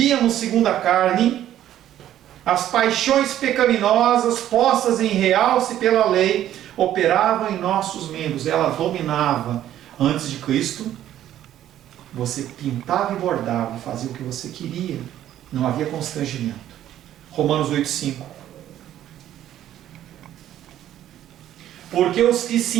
segundo a carne, as paixões pecaminosas postas em realce pela lei operavam em nossos membros, ela dominava. Antes de Cristo, você pintava e bordava, fazia o que você queria, não havia constrangimento. Romanos 8,5. Porque os que se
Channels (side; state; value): left; quieter; 12.0 dB